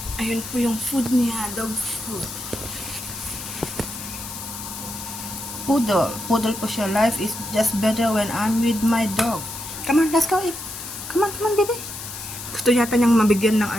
Ayun po yung food niya, dog food. Poodle. Poodle po siya. Life is just better when I'm with my dog. Come on, let's go eat. Come on, baby. Gusto yata niyang mabigyan ng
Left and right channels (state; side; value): noise; left; hiss, 9 dB below the sound